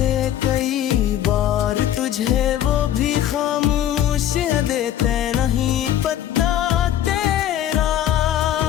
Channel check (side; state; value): right; quieter; 11.4 dB